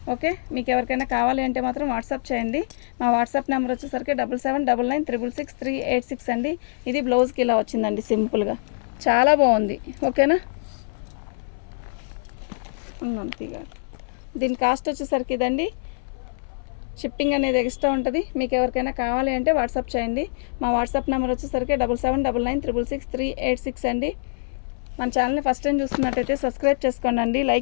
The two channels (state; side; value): silent; right; 62 dB below the other